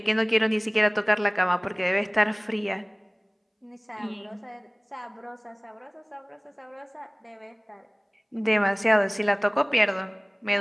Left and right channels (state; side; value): identical; both; correlation 1.00